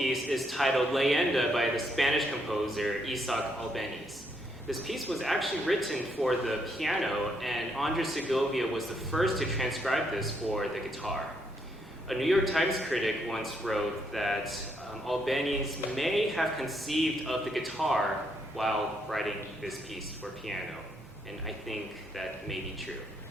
is titled Leyenda by the Spanish composer Isaac Albéniz. This piece was actually written for the piano, and Andres Segovia was the first to transcribe this for the guitar. A New York Times critic once wrote that Albéniz may have conceived of the guitar while writing this piece for piano, and I think that may be true.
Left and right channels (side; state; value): both; normal; correlation 0.75